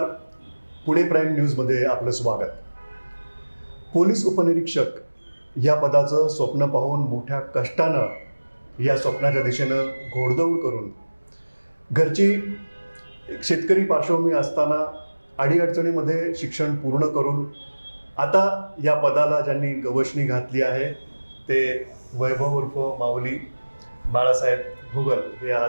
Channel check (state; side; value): inverted; both; correlation -1.00